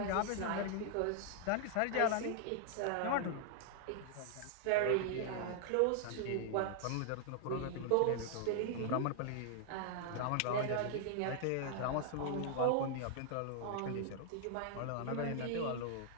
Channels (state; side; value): different; both; correlation 0.00